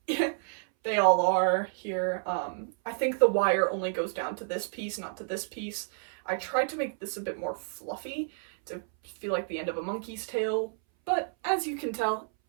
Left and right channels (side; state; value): left; silent; 58 dB below the other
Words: they all are here. I think the wire only goes down to this piece, not to this piece. I tried to make this a bit more fluffy to feel like the end of a monkey's tail, but as you can tell,